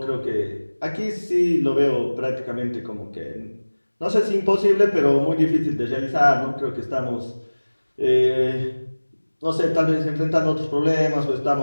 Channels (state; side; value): inverted; both; correlation -1.00